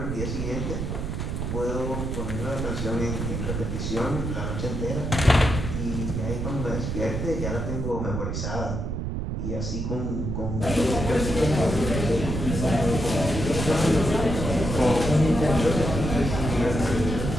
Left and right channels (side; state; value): right; noise; rumble, 3 dB below the sound